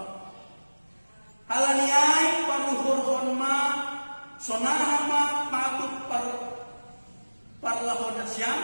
Halaniai paruhur honma sonahama patut parlahon nasyam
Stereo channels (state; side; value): inverted; both; correlation -1.00